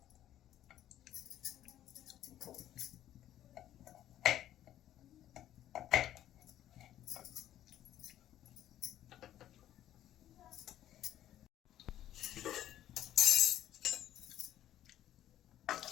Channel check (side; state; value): right; quieter; 12.3 dB